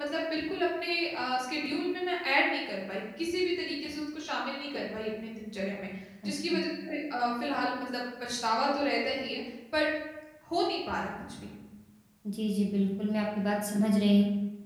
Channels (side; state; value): both; identical; correlation 1.00